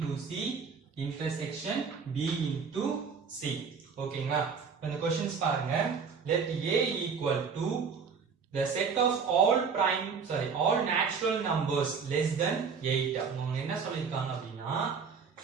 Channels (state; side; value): quieter; left; 5.8 dB